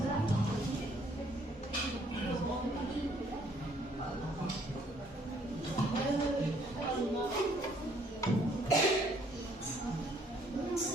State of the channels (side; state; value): both; normal; correlation 0.64